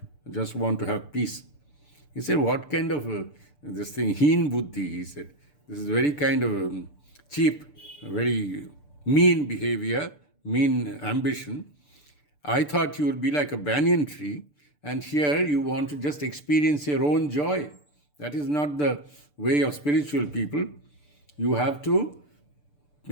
I just want to have peace. He said, what kind of this thing, heen buddhi, he said. This is very kind of cheap, very mean behavior, mean ambition. I thought you would be like a banyan tree, and here you want to just experience your own joy. That is not the way of spiritual people. You have to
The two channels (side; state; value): right; late; 6.8 ms